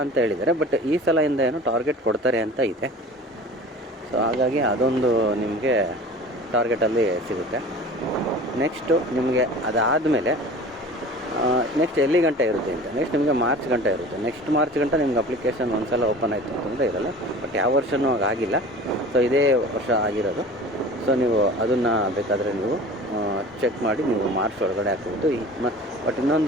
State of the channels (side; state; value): both; normal; correlation 0.40